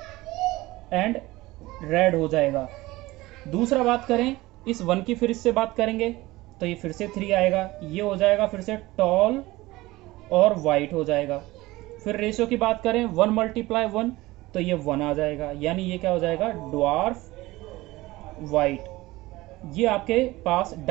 एंड रेड हो जाएगा। दूसरा बात करें, इस 1 की फिर इससे बात करेंगे तो ये फिर से 3 आएगा, ये हो जाएगा फिर से टॉल और वाइट हो जाएगा। फिर रेशियो की बात करें 1 × 1 तो ये 1 आ जाएगा, यानी ये क्या हो जाएगा, ड्वार्फ वाइट। ये आपके पास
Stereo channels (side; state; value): left; quieter; 19.4 dB